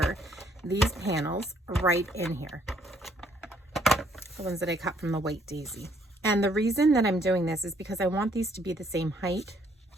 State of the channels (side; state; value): both; normal; correlation 0.67